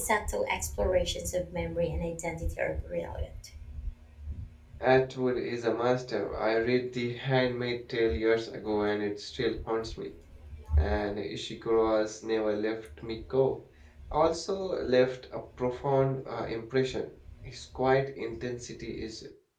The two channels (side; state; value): both; identical; correlation 1.00